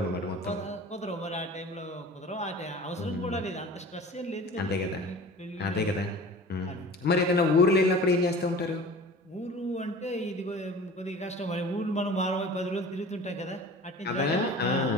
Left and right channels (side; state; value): both; normal; correlation 0.41